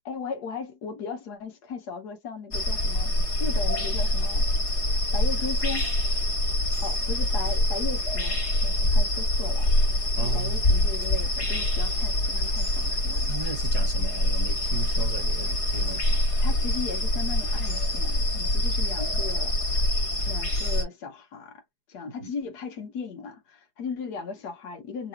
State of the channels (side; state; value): right; late; 4.8 ms